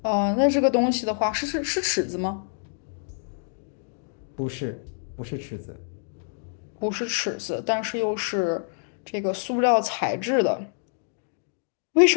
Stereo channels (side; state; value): right; silent; digital silence